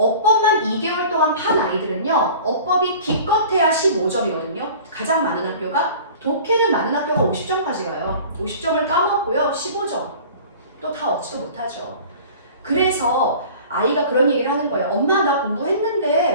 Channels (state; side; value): inverted; both; correlation -0.43